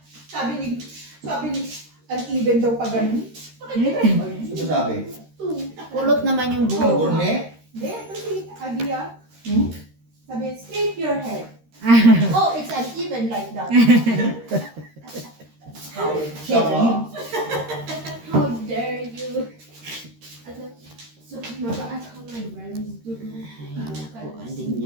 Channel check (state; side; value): late; left; 13 ms